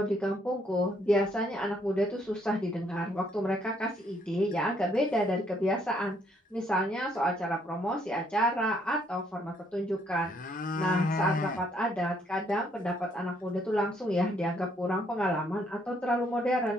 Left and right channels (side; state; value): both; normal; correlation 0.69